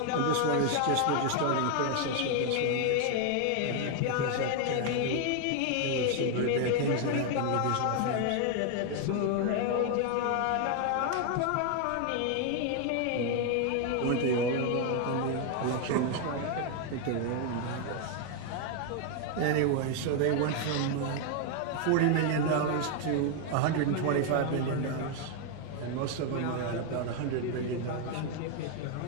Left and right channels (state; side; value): different; both; correlation 0.01